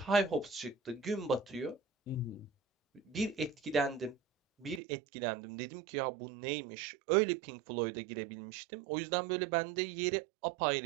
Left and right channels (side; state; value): left; drops out; at 4.8 s